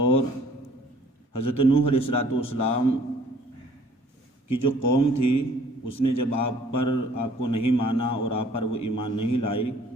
اور حضرت نوح علیہ السلام کی جو قوم تھی اس نے جب آپ کو نہیں مانا اور آپ پر وہ ایمان نہیں لائی،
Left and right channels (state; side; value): normal; both; correlation 0.56